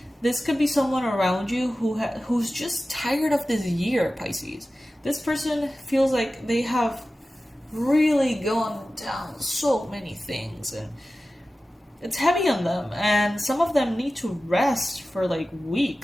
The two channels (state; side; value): normal; both; correlation 0.95